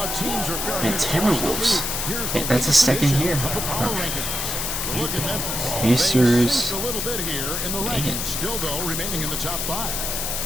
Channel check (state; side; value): noise; left; hiss, 2 dB below the sound